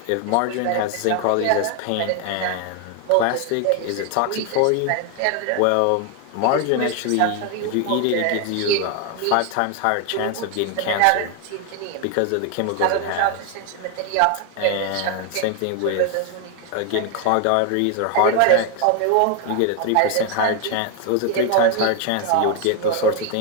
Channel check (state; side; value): different; both; correlation 0.01